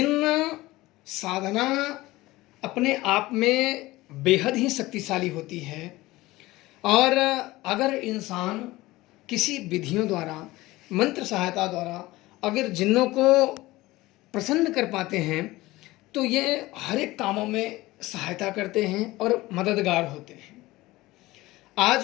साधना अपने आप में बेहद ही शक्तिशाली होती है। और अगर इंसान किसी विधियों द्वारा, मंत्र सहायता द्वारा अगर जिन्नों को प्रसन्न कर पाते हैं तो ये हर एक कामों में सहायता करते हैं और मददगार होते हैं।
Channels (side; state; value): right; quieter; 18.9 dB